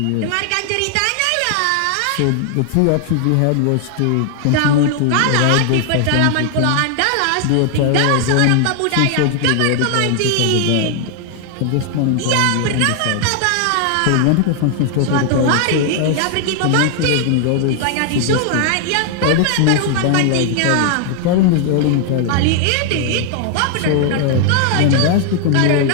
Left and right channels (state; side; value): different; both; correlation 0.00